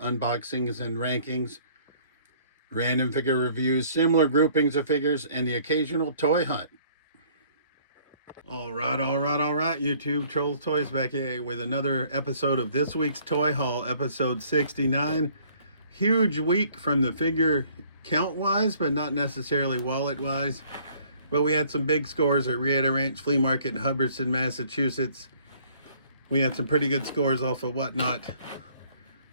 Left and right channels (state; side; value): inverted; both; correlation -0.58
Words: and rankings, random figure reviews, similar groupings of figures, and the occasional toy hunt. All right, YouTube, Trolls Toys back here with another episode of this week's Toy Haul, episode 69. Huge week from the figure count-wise, but not necessarily wallet-wise. But we had some big scores at Rietta Ranch Flea Market in Hubbardston, Massachusetts. We had some pretty good scores off of Whatnot.